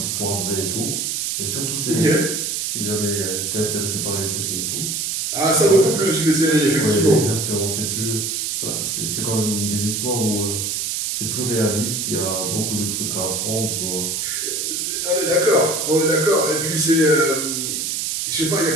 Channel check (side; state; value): right; noise; hiss, 1 dB below the sound